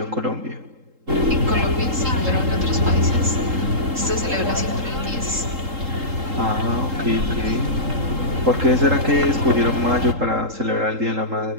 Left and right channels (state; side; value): late; left; 3.8 ms